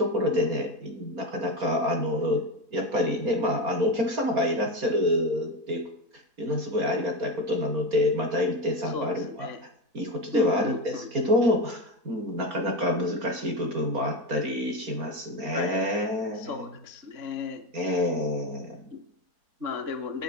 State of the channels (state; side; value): late; left; 4.3 ms